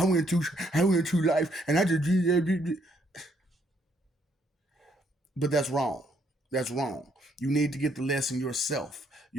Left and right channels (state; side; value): normal; both; correlation 0.70